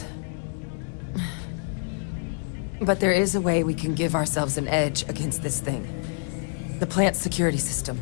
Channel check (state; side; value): silent; right; 60 dB below the other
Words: But there is a way we can give ourselves an edge against this thing. The plant's security system.